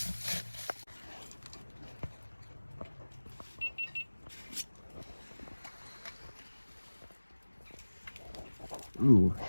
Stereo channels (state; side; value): inverted; both; correlation -1.00